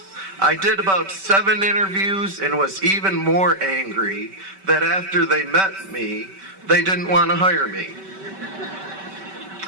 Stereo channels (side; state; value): left; late; 5.2 ms